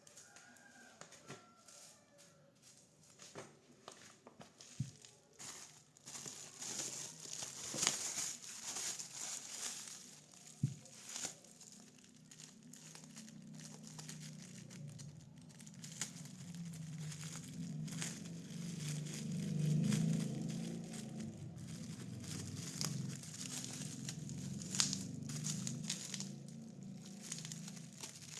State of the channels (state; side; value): identical; both; correlation 1.00